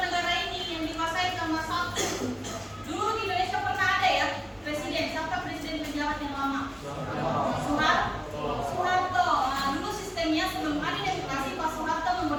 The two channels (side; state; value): both; identical; correlation 1.00